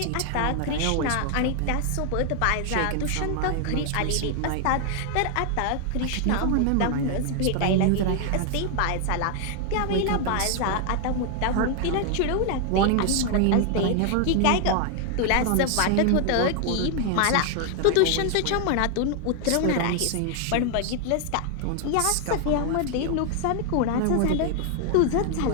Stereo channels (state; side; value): different; both; correlation 0.00